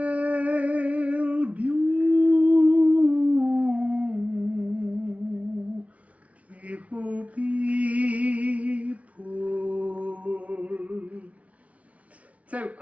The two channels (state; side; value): late; left; 0.066 ms